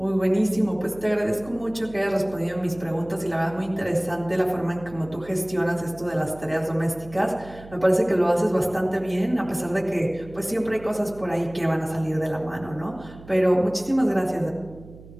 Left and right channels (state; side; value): noise; right; hum, 18 dB below the sound